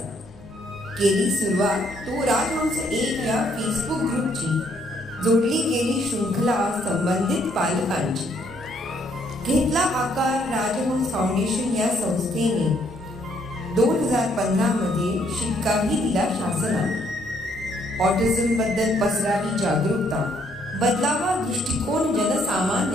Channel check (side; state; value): both; normal; correlation 0.69